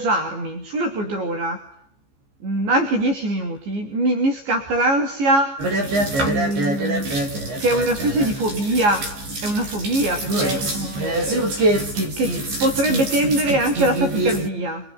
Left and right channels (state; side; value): late; left; 15 ms